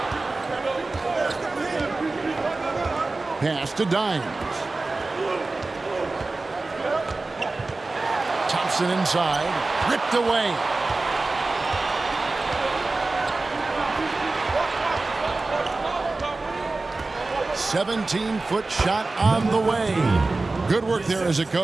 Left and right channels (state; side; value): quieter; left; 3.4 dB